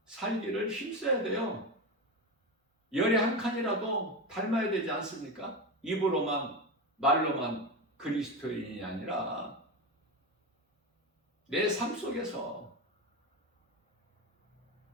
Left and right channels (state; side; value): normal; both; correlation 0.18